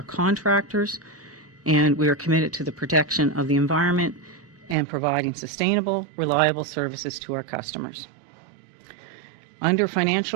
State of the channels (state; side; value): drops out; left; at 4.8 s